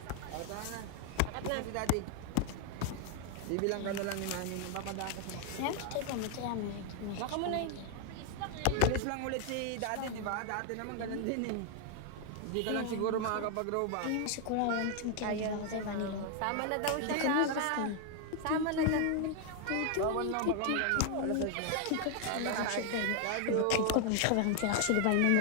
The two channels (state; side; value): different; both; correlation 0.00